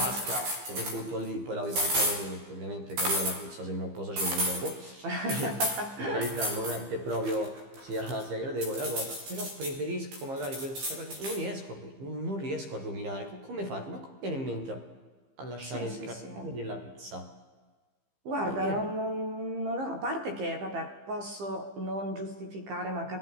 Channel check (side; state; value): left; late; 15 ms